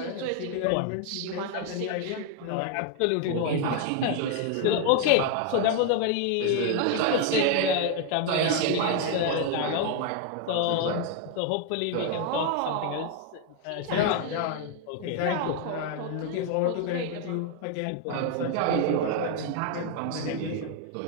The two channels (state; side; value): different; both; correlation 0.01